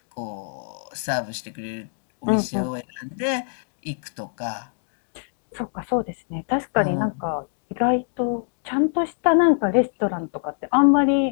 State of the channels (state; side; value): silent; right; 62 dB below the other